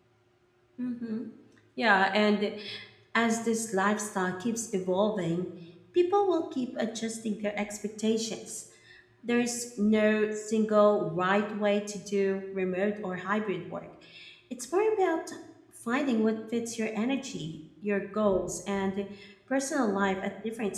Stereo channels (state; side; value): identical; both; correlation 1.00